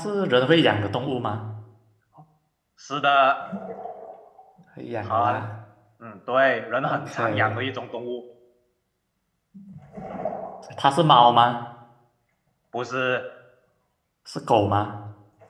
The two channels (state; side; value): identical; both; correlation 1.00